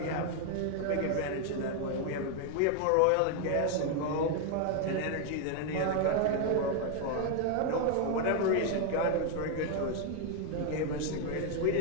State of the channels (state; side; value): different; both; correlation 0.00